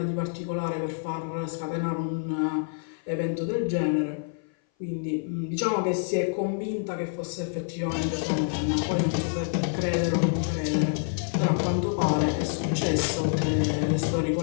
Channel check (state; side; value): silent; right; 57 dB below the other